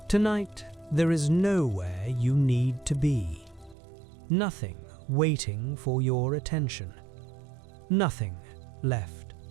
Tonight, there is nowhere you need to be. Nothing waiting for your attention. Nothing left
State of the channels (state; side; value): drops out; left; at 3.8 s